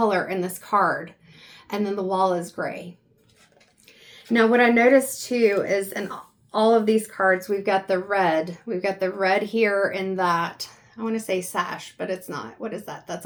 in this card. And then the wall is gray. Now what I noticed too is in all of these cards, we've got the red. We've got the red here in that, I want to say sash, but it's not. What is that? That's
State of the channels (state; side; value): identical; both; correlation 1.00